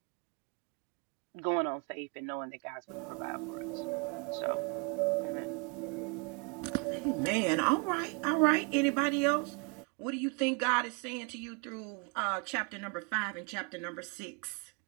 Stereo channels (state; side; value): quieter; left; 32.2 dB